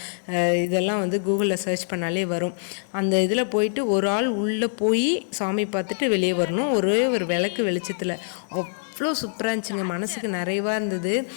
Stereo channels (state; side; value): silent; right; digital silence